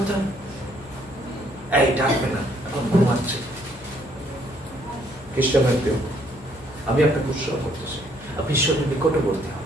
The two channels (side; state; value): left; noise; hum, 23 dB below the sound